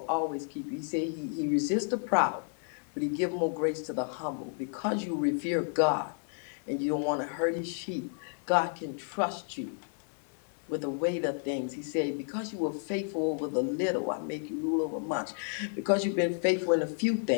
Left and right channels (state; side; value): silent; right; 57 dB below the other